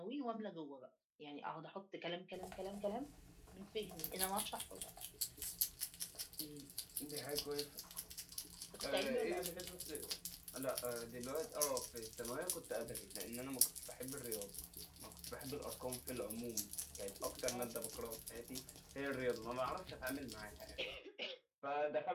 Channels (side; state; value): both; identical; correlation 1.00